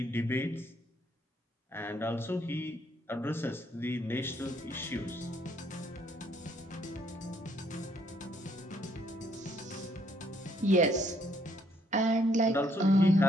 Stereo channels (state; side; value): normal; both; correlation 0.68